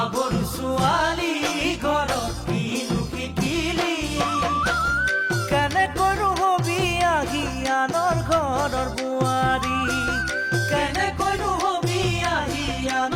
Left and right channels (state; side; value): identical; both; correlation 1.00